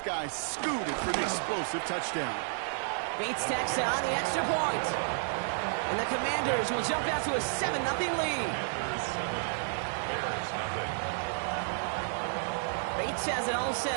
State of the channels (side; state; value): left; silent; digital silence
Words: guy scooted for the explosive touchdown. Bates tacks on the extra point. And the Commanders will jump out to a 7-0 lead. Bates has it all